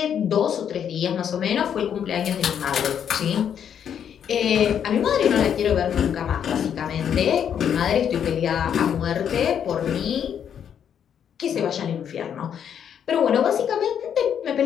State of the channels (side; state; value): right; quieter; 8.6 dB